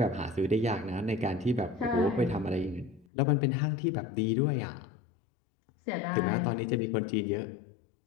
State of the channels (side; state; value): right; drops out; at 3.1 s